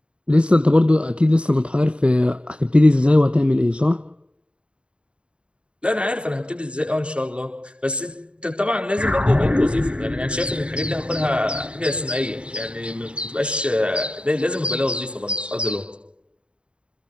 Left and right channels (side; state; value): left; late; 0.056 ms